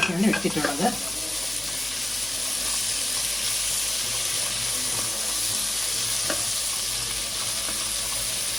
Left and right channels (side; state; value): left; noise; hum, 20 dB below the sound